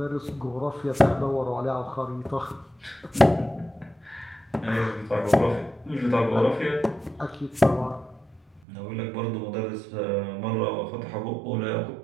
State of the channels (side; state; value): left; drops out; at 8.6 s